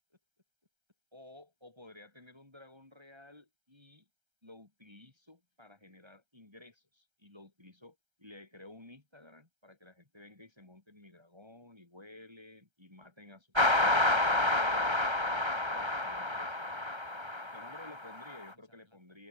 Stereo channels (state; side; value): late; left; 1.3 ms